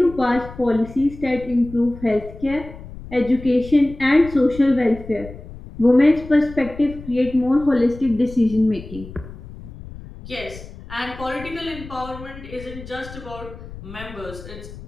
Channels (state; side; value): noise; left; rumble, 15 dB below the sound